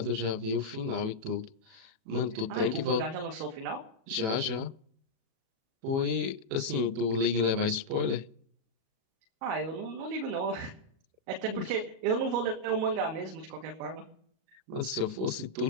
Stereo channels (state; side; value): late; left; 37 ms